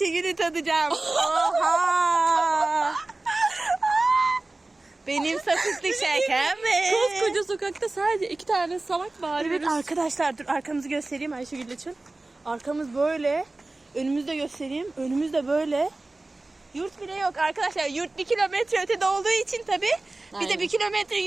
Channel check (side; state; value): left; quieter; 3.0 dB